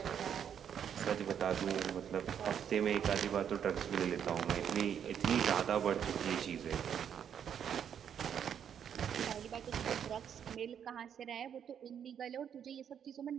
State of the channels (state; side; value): quieter; left; 8.5 dB